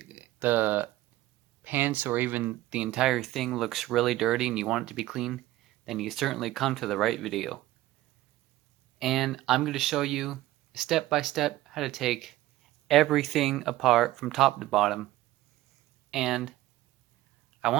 pants or even the entire thing looks really dirty and you want it to be clean, then you certainly come to the right video. And I'm going to show you step by step how to take everything apart from top to bottom. And I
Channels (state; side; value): quieter; left; 16.1 dB